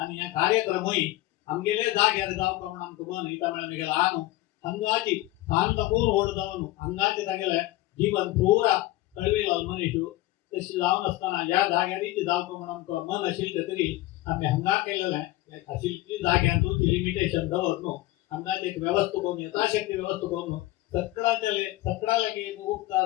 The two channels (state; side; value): quieter; right; 17.6 dB